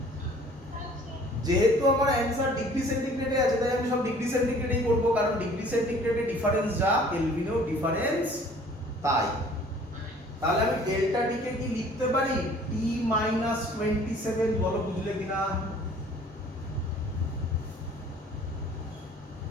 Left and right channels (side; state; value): both; normal; correlation 0.53